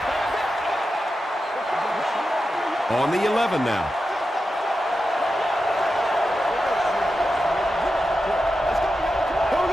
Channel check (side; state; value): both; normal; correlation 0.90